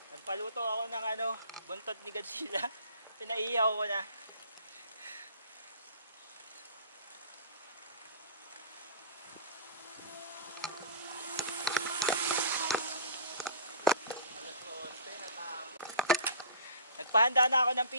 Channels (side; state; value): both; inverted; correlation -0.42